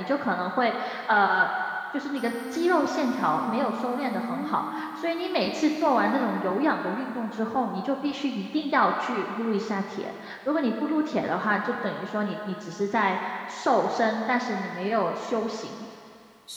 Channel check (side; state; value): both; identical; correlation 1.00